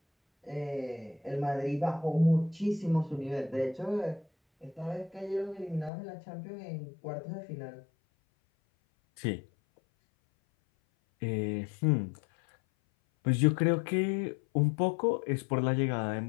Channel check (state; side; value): drops out; right; at 5.9 s